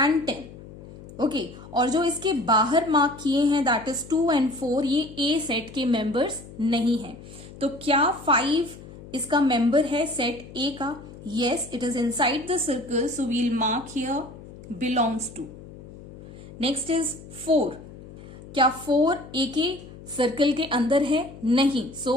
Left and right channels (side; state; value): left; noise; hum, 16 dB below the sound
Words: 10। ओके, और जो इसके बाहर मार्क किए हैं दैट इज 2 एंड 4, ये ए सेट के मेंबर्स नहीं है। तो क्या 5 इसका मेंबर है सेट ए का? Yes, it is inside the circle, so we'll mark here belongs to. Next is 4। क्या 4 ए के सर्कल के अंदर है? नहीं,